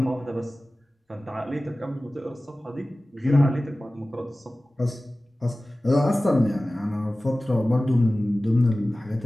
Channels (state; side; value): normal; both; correlation 0.97